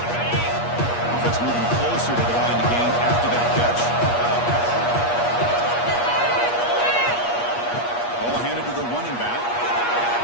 moving closer to the line to gain after that catch. Ball handed to the running back.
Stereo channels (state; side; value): late; right; 8.4 ms